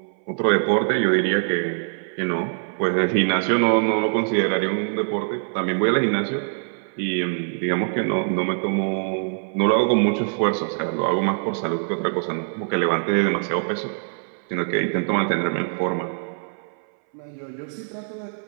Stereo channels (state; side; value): silent; left; 60 dB below the other